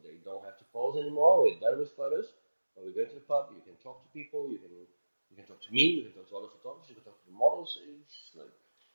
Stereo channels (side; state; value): both; inverted; correlation -1.00